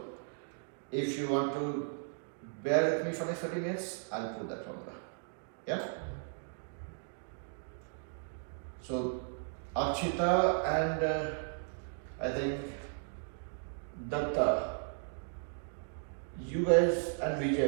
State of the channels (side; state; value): left; silent; digital silence